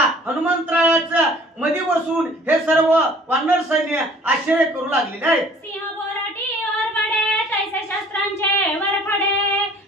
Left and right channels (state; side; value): normal; both; correlation 0.52